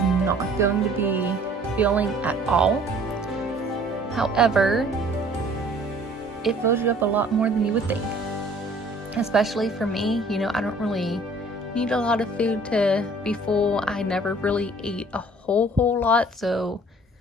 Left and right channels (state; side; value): normal; both; correlation 0.53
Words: going to be filling at all. However, it fills you up a lot more than you would think. Especially for me, I don't really need a lot of food to be full. I never really ate a whole lot, so